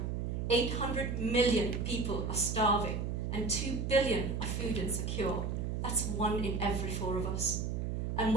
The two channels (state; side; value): noise; right; hum, 1 dB below the sound